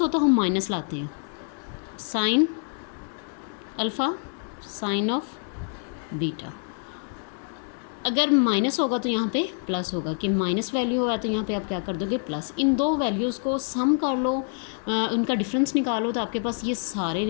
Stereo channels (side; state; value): right; silent; 56 dB below the other